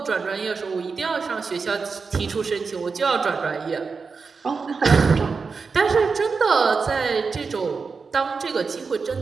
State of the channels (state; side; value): quieter; left; 4.9 dB